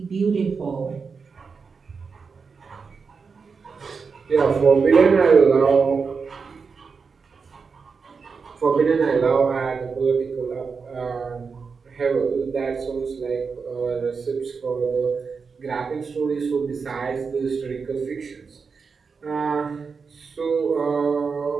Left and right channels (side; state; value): left; quieter; 5.2 dB